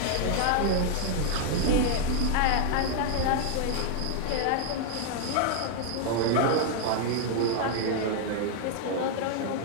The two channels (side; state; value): both; different; correlation 0.00